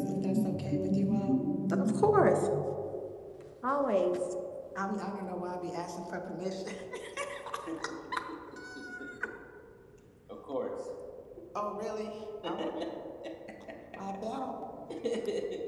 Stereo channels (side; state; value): both; identical; correlation 1.00